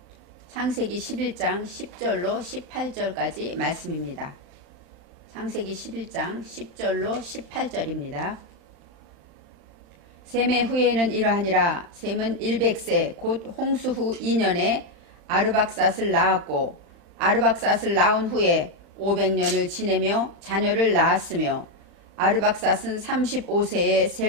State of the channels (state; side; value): late; left; 35 ms